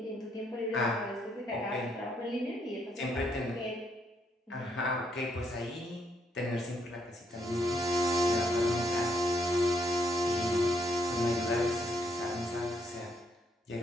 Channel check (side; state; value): both; normal; correlation 0.73